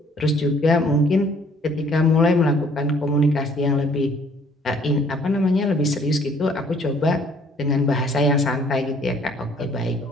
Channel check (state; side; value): normal; both; correlation 0.59